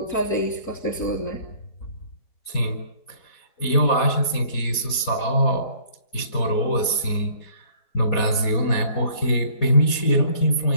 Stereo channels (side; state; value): right; late; 4.2 ms